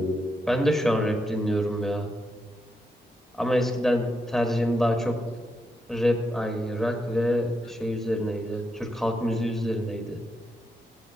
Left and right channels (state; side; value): normal; both; correlation 0.83